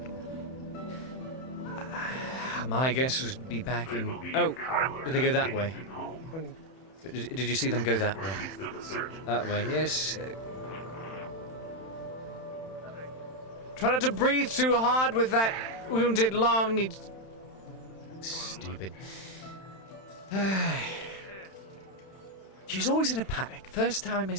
My guess would be back in... Oh, did they go that way? Did you see them go that way? That way, yes. Try not to breathe too hard with that wounded lung. Stupid. She's always in a panic. First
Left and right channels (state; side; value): late; right; 31 ms